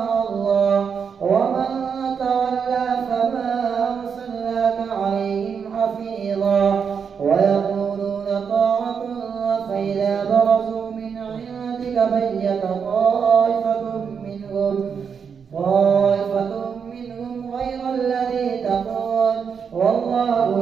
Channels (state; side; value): quieter; left; 6.6 dB